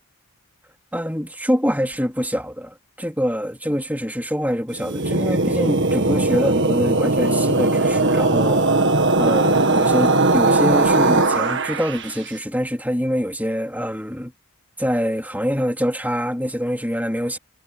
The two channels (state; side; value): normal; both; correlation 0.22